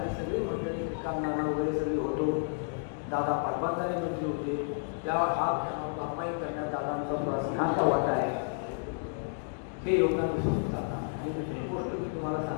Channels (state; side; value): silent; right; digital silence